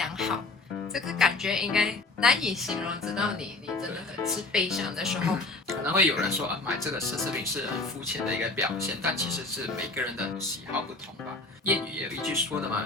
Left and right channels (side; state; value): right; quieter; 3.2 dB